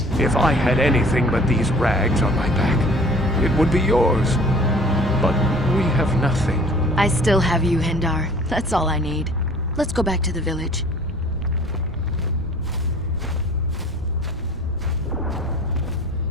If I had anything but these rags on my back, it would be yours. But we have nothing. I still have you, Hindar. That's all I need. Let's go back to the village.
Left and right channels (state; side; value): normal; both; correlation 0.49